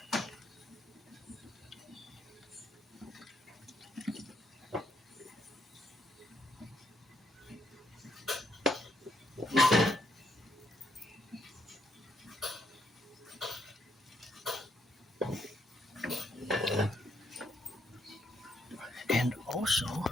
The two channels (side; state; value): both; normal; correlation 0.74